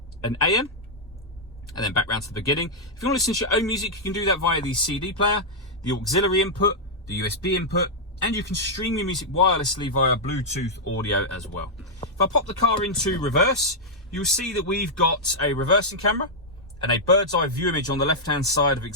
and AM. And then back round to the beginning. If you want to listen to your own music, you can do that via the CD player, the auxiliary input, the USB input, and you can stream your music wirelessly via Bluetooth audio as well. If I pop the car into reverse, you'll see that we've got a reversing camera and a bird's eye view image on the left-hand side of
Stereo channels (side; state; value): both; normal; correlation -0.06